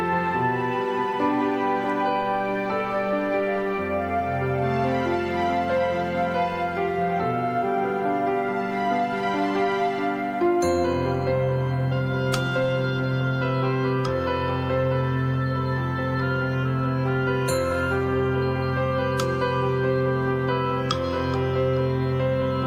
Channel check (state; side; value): identical; both; correlation 1.00